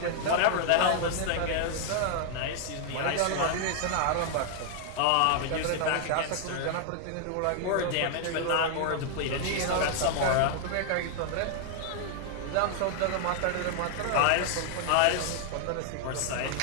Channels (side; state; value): both; different; correlation 0.00